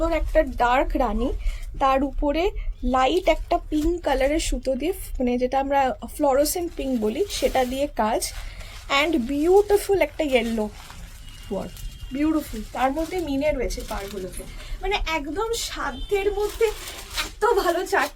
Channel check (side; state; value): both; identical; correlation 1.00